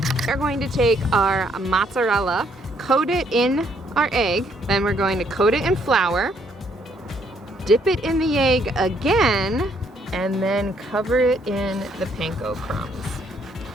We're going to take our mozzarella, coat it in our egg, then we're going to coat it in flour, dip it in the egg again, and then cover it in the panko crumbs.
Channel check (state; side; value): normal; both; correlation 0.68